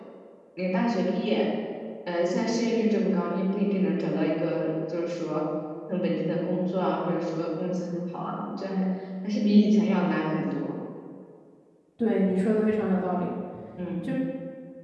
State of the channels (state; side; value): identical; both; correlation 1.00